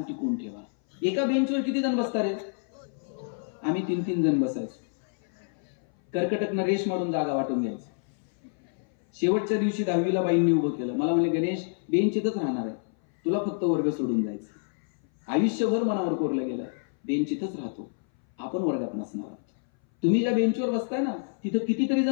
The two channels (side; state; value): right; silent; 58 dB below the other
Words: ठेवा. एका बेंचवर किती जण बसतात रे? आम्ही 3-3 जण बसायचो. कर्कटकनं रेश मारून जागा वाटून घ्यायचं. शेवटच्या दिवशी 10वीला बाईंनी उभं केलं. मला म्हणले, गणेश बेंच इथंच राहणार आहे, तुला फक्त वर्ग सोडून जायचं. आयुष्यभर मनावर कोरलं गेलं, बेंच इथंच राहतो, आपण वर्गात नसणार आहोत. तुम्ही ज्या बेंचवर बसताय ना, तिथं कितीतरी